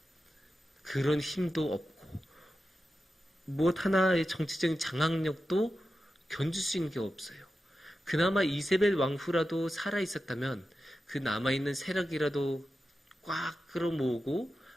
그런 힘도 없고 무엇 하나의 정치적인 장악력도 견줄 수 있는 게 없어요. 그나마 이세벨 왕후라도 살아있었다면 그 남아있는 세력이라도 꽉 끌어모으고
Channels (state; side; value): normal; both; correlation 0.91